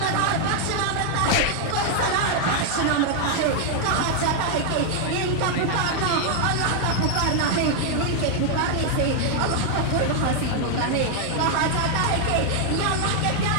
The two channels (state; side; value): different; both; correlation 0.00